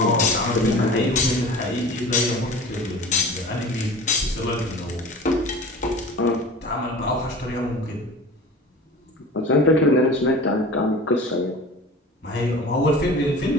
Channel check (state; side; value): normal; both; correlation 0.38